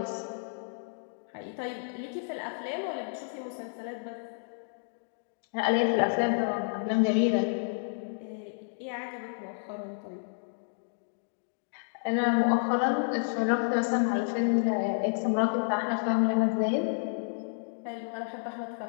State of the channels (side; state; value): right; silent; digital silence